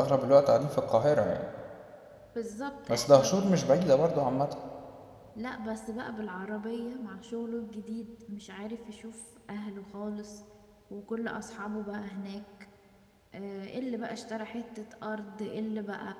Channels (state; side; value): identical; both; correlation 1.00